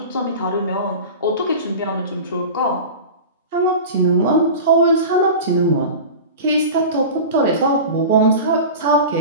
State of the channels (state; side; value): inverted; both; correlation -0.32